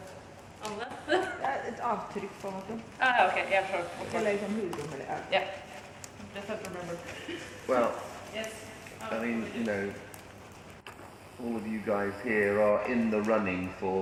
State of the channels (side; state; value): both; identical; correlation 1.00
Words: Ett avtryck från den. Okay, yeah, sure. Eller som hudrum eller Yeah, just have to remember. Well, Yes. I mean, you know, all of you guys here are in the running